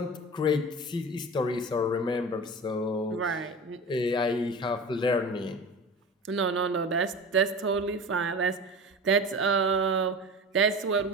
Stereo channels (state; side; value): normal; both; correlation 0.33